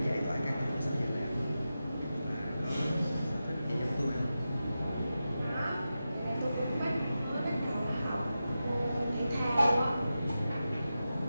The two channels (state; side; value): inverted; both; correlation -0.92